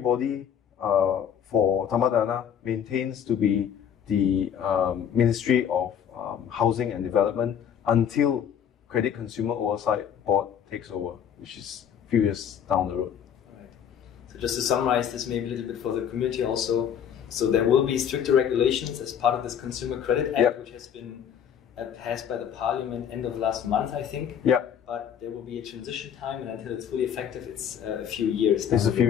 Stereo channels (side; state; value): right; quieter; 8.6 dB